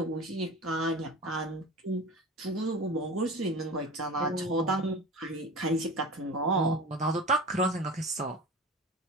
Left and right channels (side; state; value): both; normal; correlation 0.33